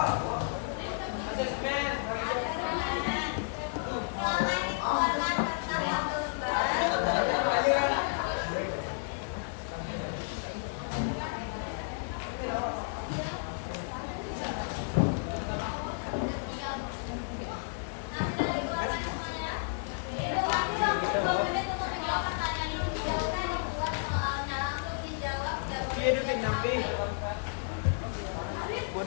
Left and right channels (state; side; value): silent; right; 56 dB below the other